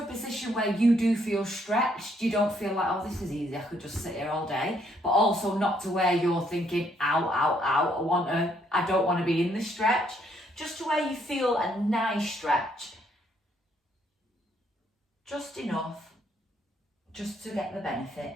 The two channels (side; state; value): both; normal; correlation 0.70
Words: a position where you do feel stretched. You don't feel like, oh, this is easy, I could just sit here all day. But also not to where you're thinking, ow, ow, ow, I don't want to be in this stretch. Just to where you feel a nice stretch. Just enough, just to get the